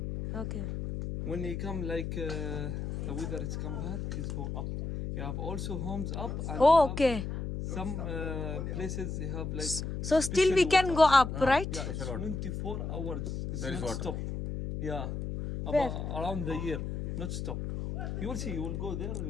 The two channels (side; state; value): left; noise; hum, 4 dB below the sound